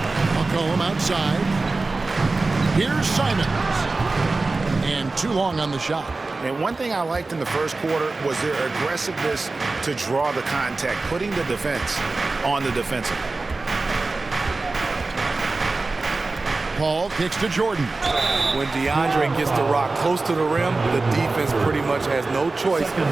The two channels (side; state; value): left; quieter; 3.5 dB